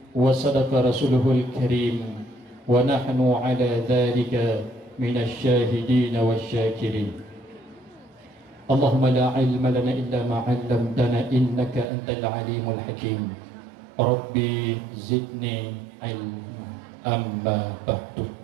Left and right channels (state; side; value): drops out; left; at 11.9 s